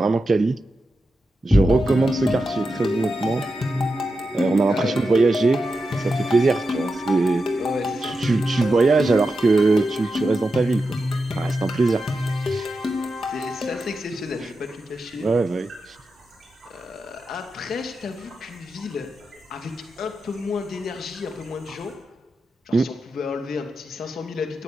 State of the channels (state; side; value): normal; both; correlation 0.89